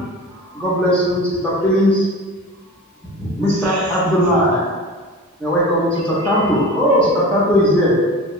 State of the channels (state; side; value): normal; both; correlation 0.34